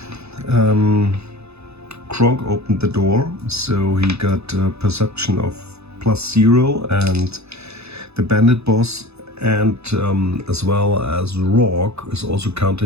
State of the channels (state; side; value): late; left; 0.79 ms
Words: Kronk opened the door, so he got a perception of +0, and the bandit boss and as well as Rorg is also